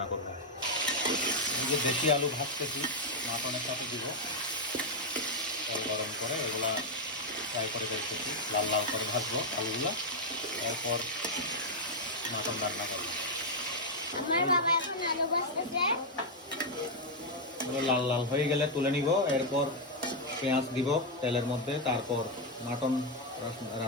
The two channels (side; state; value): both; normal; correlation 0.01